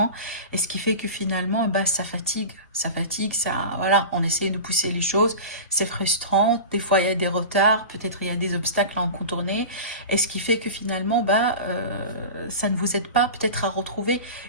et ce qui fait que finalement ça fatigue, voilà, on essaye de pousser les choses, c'est frustrant, des fois il y a des retards, peut-être il y a des obstacles à en contourner et ce qui fait que finalement ça ne vous aide pas peut-être à retrouver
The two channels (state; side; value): inverted; both; correlation -0.31